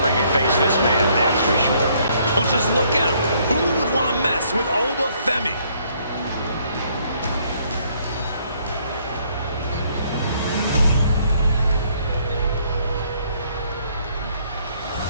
ring and face this man, that's for sure. Well, just look at him. Who would want to mess with Oba Femi?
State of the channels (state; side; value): inverted; both; correlation -0.66